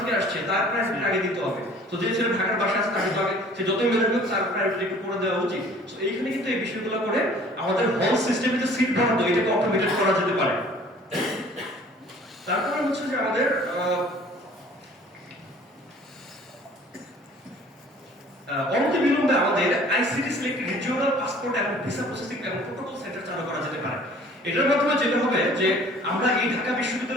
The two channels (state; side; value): normal; both; correlation 0.51